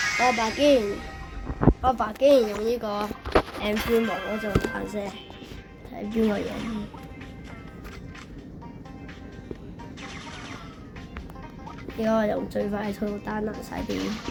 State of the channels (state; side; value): identical; both; correlation 1.00